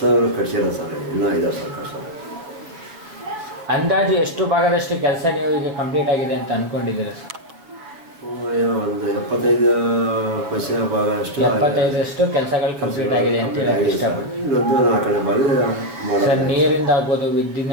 ಸರ್. ಇನ್ನೂ ಇದಾವೆ ಸರ್ ಕಟ್ಸೋದು. ಅಂದಾಜು ಎಷ್ಟು ಭಾಗದಷ್ಟು ಕೆಲಸ ನೀವು ಈಗ ಕಂಪ್ಲೀಟ್ ಆಗಿದೆ ಅಂತ ಅಂದ್ಕೊಂಡಿದ್ದೀರಾ ಸರ್? ಒಂದು 75% ಭಾಗ ಅಷ್ಟು 75% ಕೆಲಸಗಳು ಕಂಪ್ಲೀಟ್ ಆಗಿದೆ ಅಂತ ಹೇಳಕ್ಕೆ ಇಷ್ಟಪಡ್ತೀನಿ. ಇನ್ನೊಂದು 4ನೇ ಭಾಗ ಸರ್, ನೀರಿಂದ ಆಗ್ಬೋದು,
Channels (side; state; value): left; late; 6.9 ms